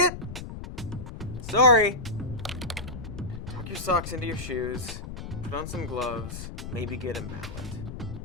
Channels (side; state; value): left; noise; rumble, 9 dB below the sound